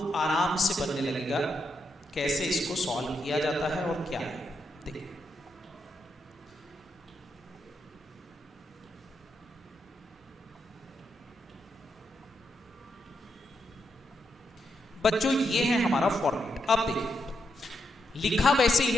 आराम से बनने लगेगा कैसे इसको सॉल्व किया जाता है और क्या है। देखिए बच्चों, ये है हमारा फॉर्मेट। अब देखिए लिखा वैसे ही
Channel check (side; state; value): both; normal; correlation 0.82